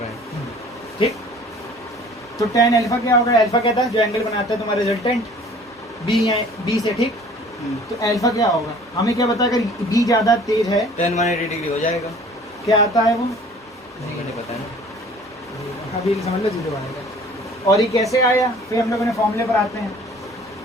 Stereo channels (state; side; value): normal; both; correlation 0.50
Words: हैं। ठीक, तो tan अल्फा क्या होगा? अल्फा क्या था? जो एंगल बनाता है तुम्हारा रिजल्टेंट बी से। ठीक, तो अल्फा क्या होगा? हमें क्या पता? अगर बी ज्यादा तेज है 10 180 डिग्री हो जाएगा। क्या आता है वो? नहीं पता है। अभी समझ लो 0 आएगा। और ये कैसे आया? फिर हम लोग ने फॉर्मूले पर आते हैं।